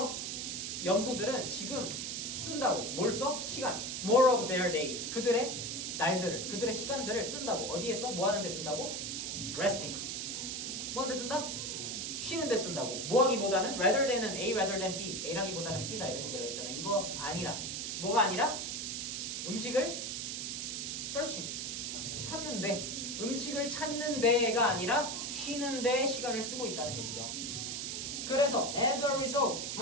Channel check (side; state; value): right; noise; hiss, 3 dB below the sound